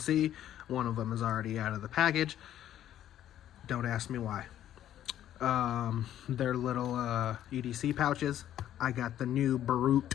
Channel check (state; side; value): quieter; right; 11.6 dB